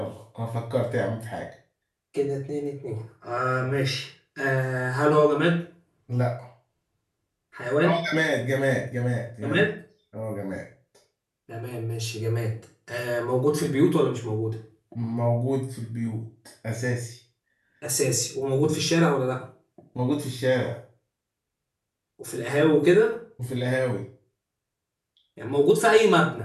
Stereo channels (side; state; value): both; identical; correlation 1.00